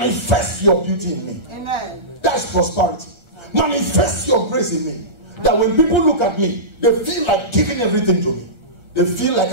your beauty in me. Amen. That's prosperity. Manifest your grace in me. That when people look at me, they feel like giving everything to me. They feel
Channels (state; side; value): late; left; 1.3 ms